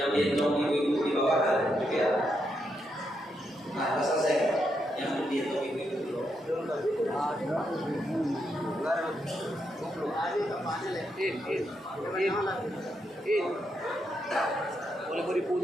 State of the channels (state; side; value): normal; both; correlation 0.81